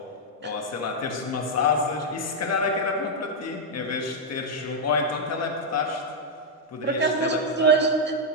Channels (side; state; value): both; normal; correlation -0.02